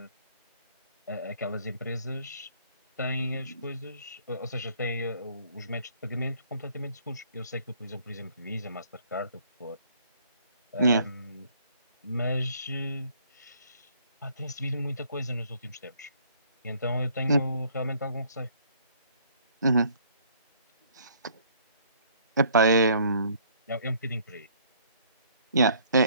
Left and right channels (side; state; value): both; inverted; correlation -0.62